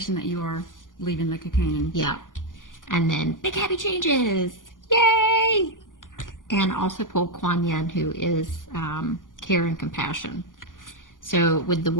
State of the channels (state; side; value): late; right; 0.88 ms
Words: that you are leaving the cocoon. Yeah. And then big happy changes. Yay! And also pulled Kuan Yin, who is care and compassion. So with the